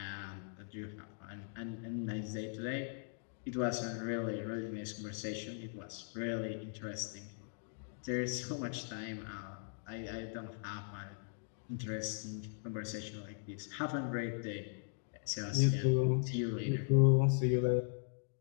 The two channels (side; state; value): right; silent; digital silence